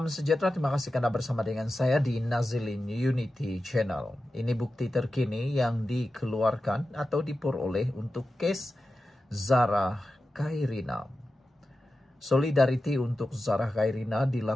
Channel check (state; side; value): normal; both; correlation 0.93